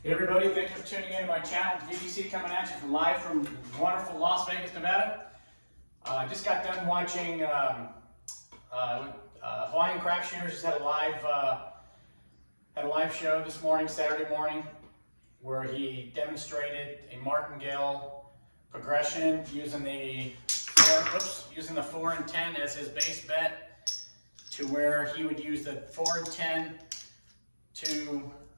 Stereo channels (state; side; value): inverted; both; correlation -1.00